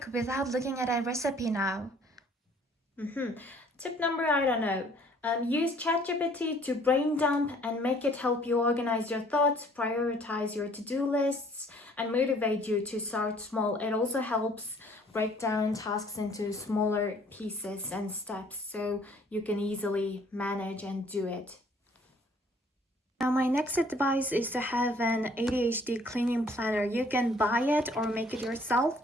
without looking at a recipe now. Tip number, I don't know. Use ChatGPT to brain dump and make it help you organize your thoughts, prioritize your to-do lists, and motivate you to start small. It also helps break down tasks into smaller pieces and steps so you can easily manage and do it. Now, my next advice is to have an ADHD cleaning planner. You can buy it or make it yourself.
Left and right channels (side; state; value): both; normal; correlation 0.58